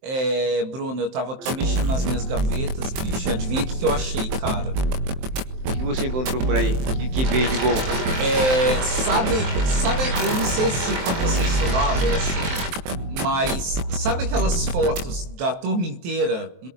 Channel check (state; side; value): late; left; 23 ms